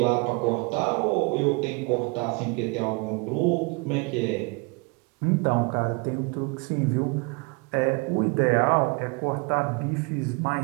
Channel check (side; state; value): left; quieter; 29.7 dB